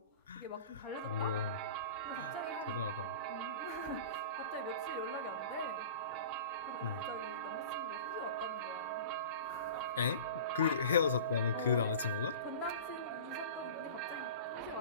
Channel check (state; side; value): inverted; both; correlation -0.36